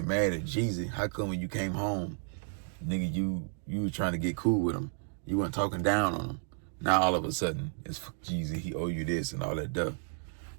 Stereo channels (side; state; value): left; silent; 56 dB below the other